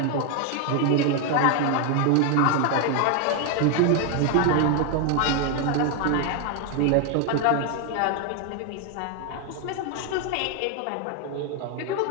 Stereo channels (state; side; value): different; both; correlation 0.01